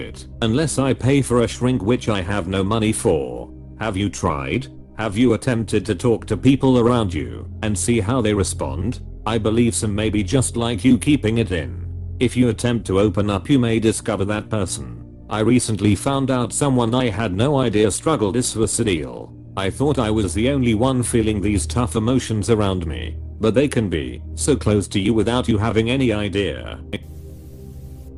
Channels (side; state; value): both; identical; correlation 1.00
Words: unless I pay for a shrink, which I have no money for. Have you tried? Have you attempted to talk to people around you and see how they respond? I believe some may be just like you, keeping it in. If you attempt to open up, you may discover that person. I recently found out someone I had no idea struggled is suicidal. I thought I was the only one feeling these tough emotions around me, but they can be so close to you without you having any idea.